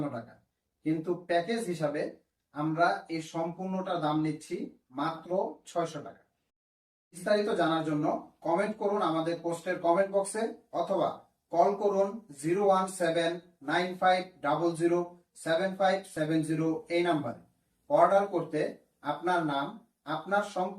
টাকা, কিন্তু প্যাকেজ হিসাবে আমরা এই সম্পূর্ণটা দাম নিচ্ছি মাত্র 600 টাকা। বিস্তারিত জানার জন্য কমেন্ট করুন আমাদের পোস্টের কমেন্ট বক্সে, অথবা কল করুন 01795007570 এই নাম্বারে। অর্ডার করতে আপনার নাম, আপনার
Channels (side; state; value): both; identical; correlation 1.00